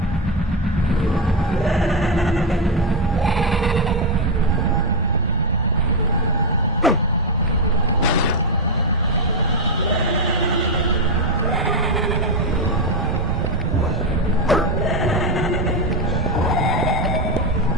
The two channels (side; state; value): both; normal; correlation 0.06